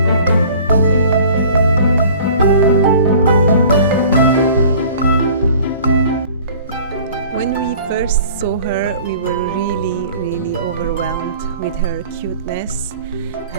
When we first saw her, we were really overwhelmed with her cuteness,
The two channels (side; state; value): both; inverted; correlation -0.48